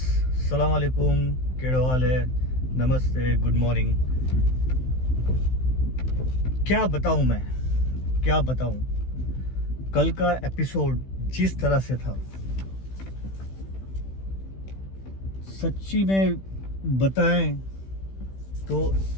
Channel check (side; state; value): right; late; 16 ms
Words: सलाम अलैकुम। केड़ो हाल है? नमस्ते, गुड मॉर्निंग। क्या बताऊं मैं, क्या बताऊं। कल का एपिसोड जिस तरह से था, सच्ची में बताएं तो